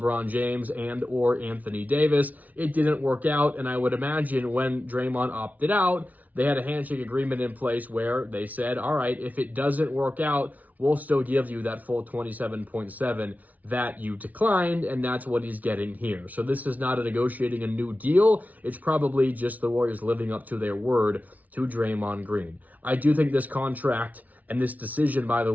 James and or Anthony Davis. It didn't work out, and I would imagine when Draymond opted out, they had a handshake agreement in place where they said, all right, if it doesn't work out, we'll still give you that full 27.7 that you declined, and that's what he's getting here. So this is not a negotiating a new deal. It's probably just the Warriors living up to their word to Draymond Green. I do think this contract and this decision by the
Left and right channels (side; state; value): left; late; 0.074 ms